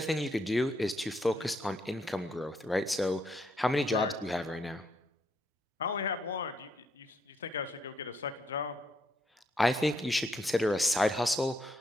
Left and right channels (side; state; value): both; normal; correlation 0.75